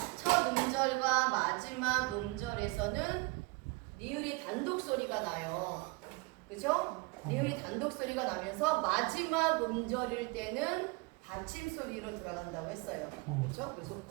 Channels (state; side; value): quieter; left; 26.6 dB